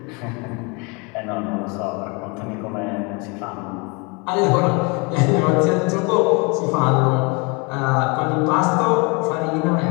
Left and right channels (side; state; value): right; quieter; 30.2 dB